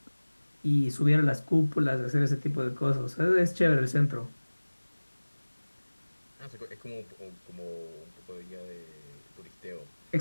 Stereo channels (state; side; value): inverted; both; correlation -1.00